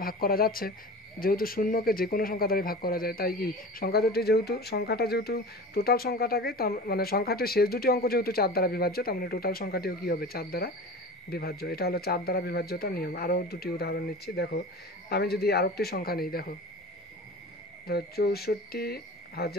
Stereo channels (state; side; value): normal; both; correlation 0.35